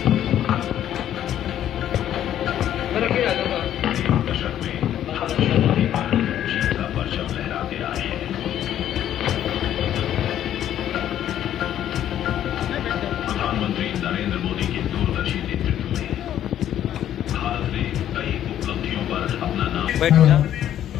प्रधानमंत्री नरेंद्र मोदी के दूरदर्शी नेतृत्व में भारत ने कई उपलब्धियों पर अपना नाम। Hello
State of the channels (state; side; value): quieter; right; 11.1 dB